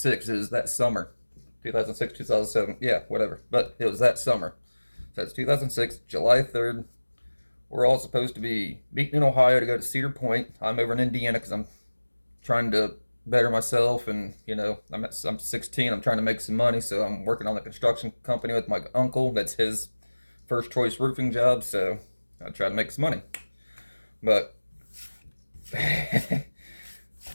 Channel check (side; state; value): both; inverted; correlation -1.00